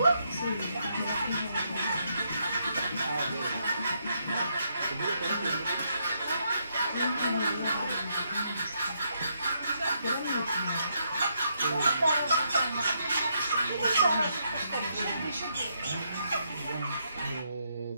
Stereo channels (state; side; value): inverted; both; correlation -0.77